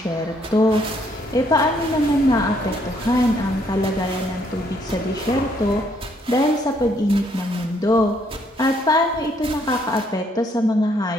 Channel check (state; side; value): normal; both; correlation 0.69